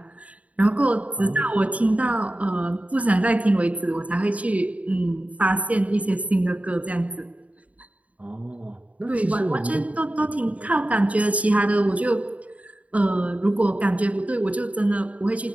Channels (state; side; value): late; left; 0.068 ms